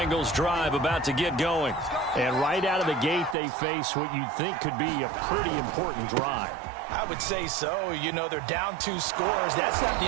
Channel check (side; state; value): left; drops out; at 3.4 s